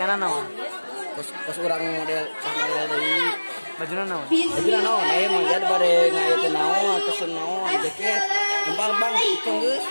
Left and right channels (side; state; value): both; inverted; correlation -1.00